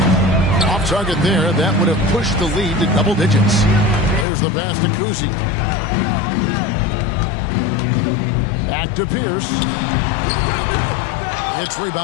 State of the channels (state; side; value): drops out; right; at 4.2 s